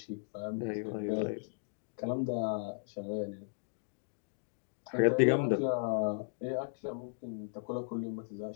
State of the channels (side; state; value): right; silent; digital silence